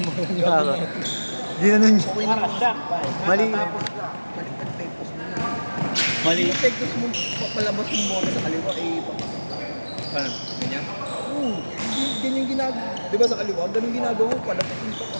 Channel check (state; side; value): inverted; both; correlation -1.00